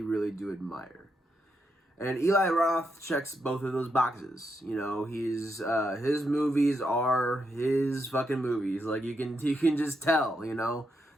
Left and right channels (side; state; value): both; normal; correlation 0.82